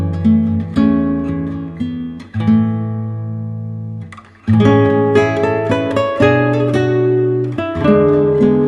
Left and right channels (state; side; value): identical; both; correlation 1.00